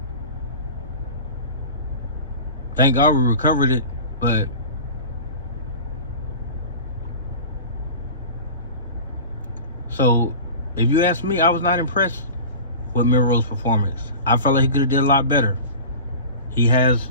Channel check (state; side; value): inverted; both; correlation -0.35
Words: Thank God we recovered it, but so if you ask me, I was not impressed with Milroe's performance. I felt like he could have did a lot better. He has